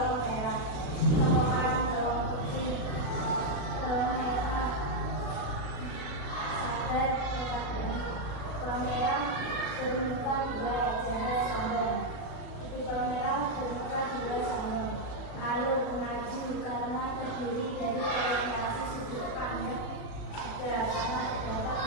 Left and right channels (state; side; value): late; right; 37 ms